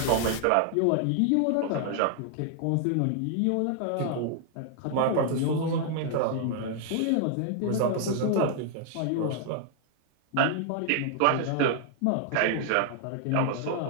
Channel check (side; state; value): both; different; correlation 0.00